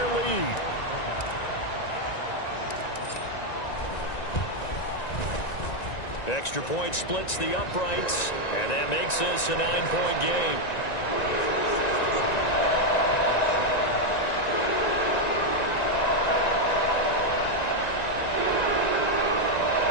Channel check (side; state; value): right; late; 1.9 ms